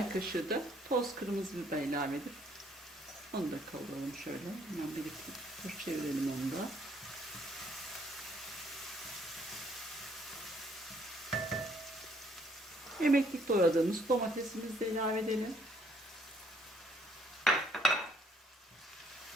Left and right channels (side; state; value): both; normal; correlation 0.65